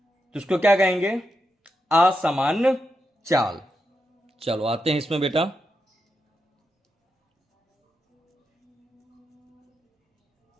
तो उसको क्या कहेंगे? असामान्य चाल। चलो आते हैं इसमें बेटा।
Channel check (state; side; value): normal; both; correlation 0.85